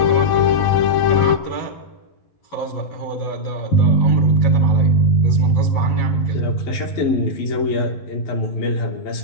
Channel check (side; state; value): right; late; 11 ms